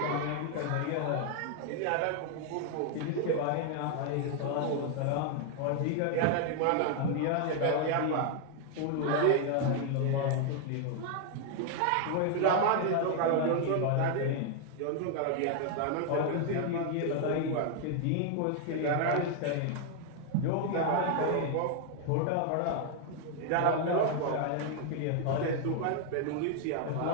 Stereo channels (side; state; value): both; different; correlation 0.00